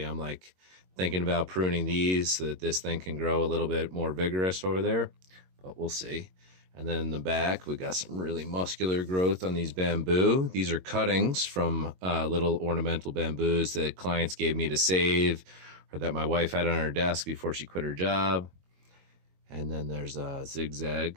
I'm like thinking about pruning these so that this thing can grow a little bit more vigorous over there, but we'll see. And then in the back, we got some really muscular growth on these bamboo. These are cuttings from little ornamental bamboos that clients gave me to save or that my wife had on her desk before she quit her job. And then there's a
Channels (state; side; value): late; left; 22 ms